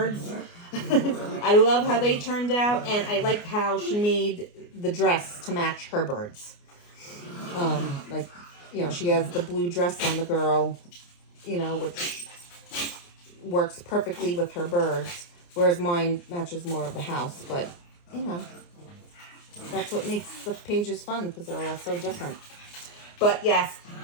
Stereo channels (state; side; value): late; right; 29 ms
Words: I love how they turned out, and I like how she made the dress to match her birds. Like, you know, she has the blue dress on the girl, you know, which works perfectly with her birds, whereas mine matches more of the house. But, you know, that's what makes the pages fun, because they're all so different. But yes,